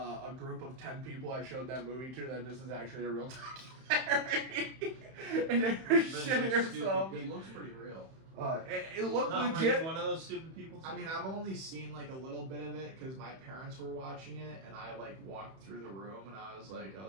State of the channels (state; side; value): late; left; 31 ms